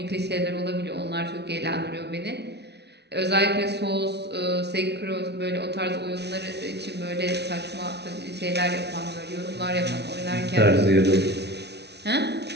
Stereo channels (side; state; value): left; late; 0.49 ms